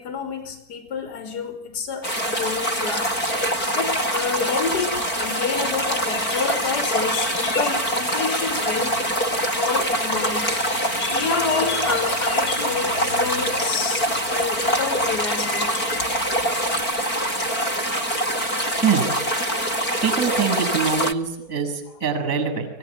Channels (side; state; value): right; late; 4.4 ms